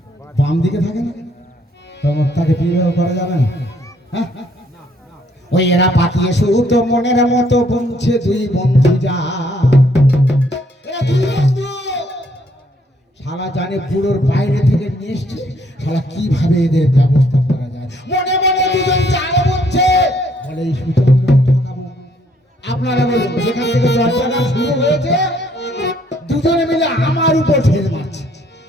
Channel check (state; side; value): normal; both; correlation 0.67